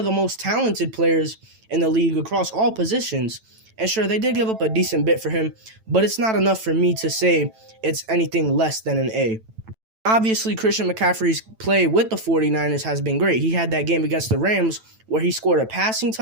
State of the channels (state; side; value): late; left; 9.0 ms